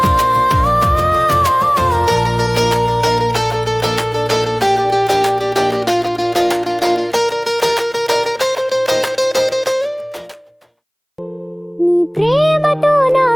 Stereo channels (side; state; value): both; identical; correlation 1.00